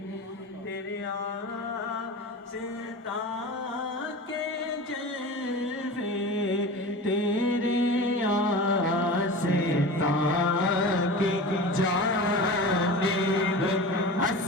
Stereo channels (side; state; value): both; normal; correlation 0.32